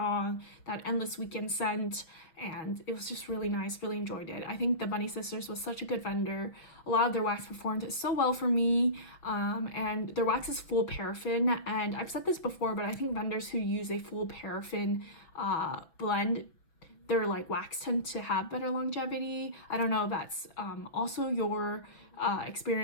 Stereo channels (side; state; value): right; late; 6.4 ms